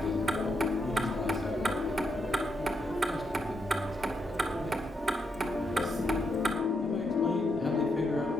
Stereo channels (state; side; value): normal; both; correlation 0.81